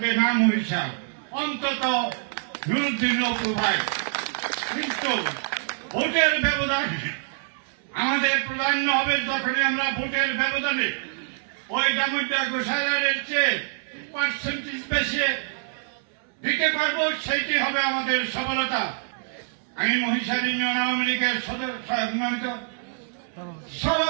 না মহিষা, অন্তত নুরুদ্দিন অপু ভাই, কিন্তু ভোটের ব্যবধান আমাদের প্রাধান্য হবে যখনই আমরা ভোটের ব্যবধানে ওই ডামুড্ডা গোসালারের চেয়ে পার্সেন্টেজ বেশি দিতে পারবো, সেইটি হবে আমাদের সফলতা। আমি মহিষার ইউনিয়ন আওয়ামী লীগের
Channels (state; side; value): silent; left; 61 dB below the other